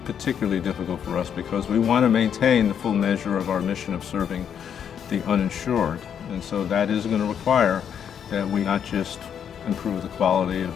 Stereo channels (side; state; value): right; quieter; 8.3 dB